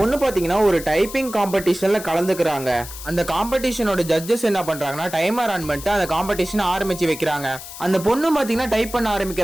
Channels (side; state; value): left; noise; hiss, 13 dB below the sound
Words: பாத்தீங்கன்னா ஒரு டைப்பிங் காம்படிஷன்ல கலந்துக்கிறாங்க. அந்த காம்படிஷனோட ஜட்ஜஸ் என்ன பண்றாங்கன்னா டைமர் ஆன் பண்ணிட்டு அந்த காம்படிஷன் ஆரம்பிச்சு வைக்கிறாங்க. அந்த பொண்ணு பாத்தீங்கன்னா டைப் பண்ண